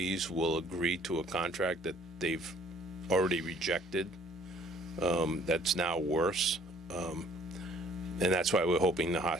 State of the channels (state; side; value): normal; both; correlation 0.58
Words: will agree to a contract that they've already rejected. That's now worse. And that's why we're hoping the